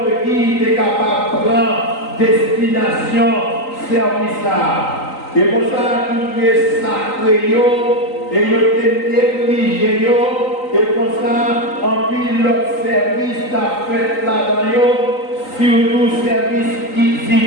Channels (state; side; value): late; right; 3.9 ms